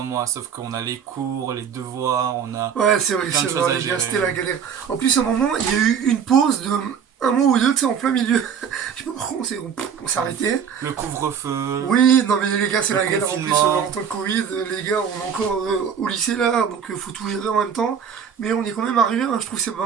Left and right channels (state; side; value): quieter; left; 7.4 dB